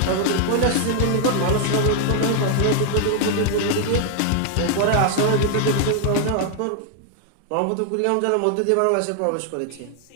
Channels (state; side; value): different; both; correlation 0.00